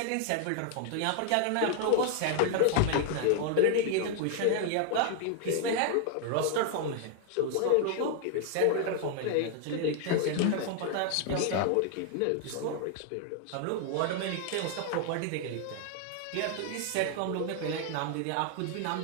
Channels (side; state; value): both; different; correlation 0.00